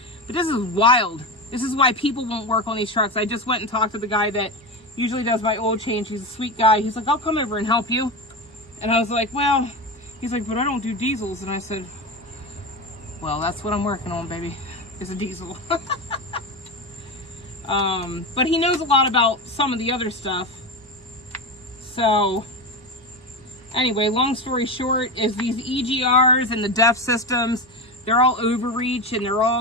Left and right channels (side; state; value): both; normal; correlation 0.20